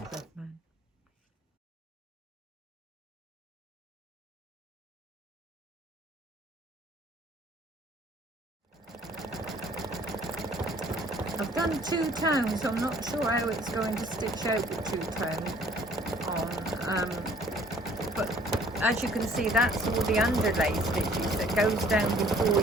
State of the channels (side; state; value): both; normal; correlation 0.57